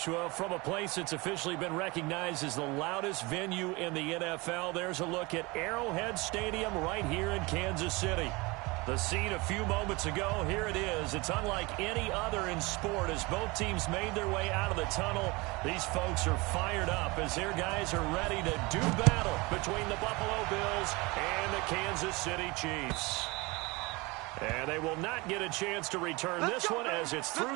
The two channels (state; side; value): quieter; left; 24.7 dB